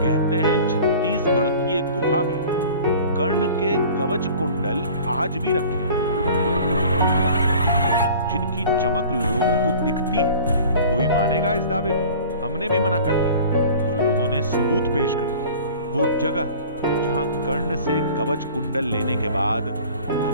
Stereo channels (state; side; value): inverted; both; correlation -0.44